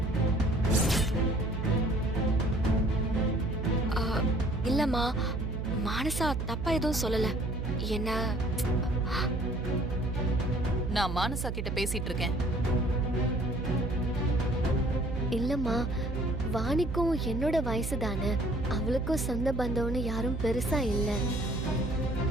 இல்லம்மா, மானசா தப்பா எதுவும் சொல்லல. என்ன, நான் மானசா கிட்ட பேசிட்டு இருக்கேன். இல்லம்மா, வாணிக்கும் என்னோட வயசு தானே, அவளுக்கும் சொந்த பந்தம்னு யாரும் பெருசா இல்ல.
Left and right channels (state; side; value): noise; right; hum, 2 dB below the sound